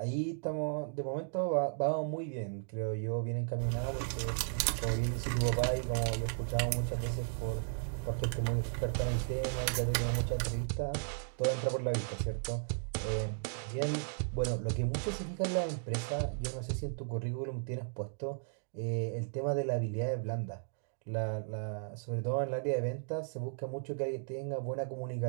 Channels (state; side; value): silent; left; digital silence